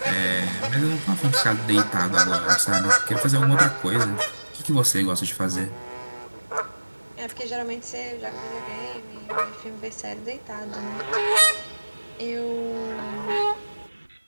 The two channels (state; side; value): inverted; both; correlation -1.00